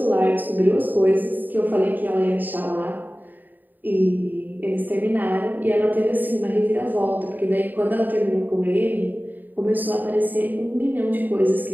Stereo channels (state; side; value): late; left; 0.088 ms